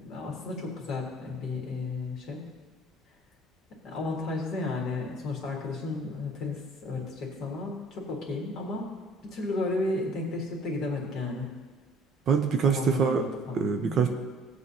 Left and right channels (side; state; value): both; normal; correlation 0.54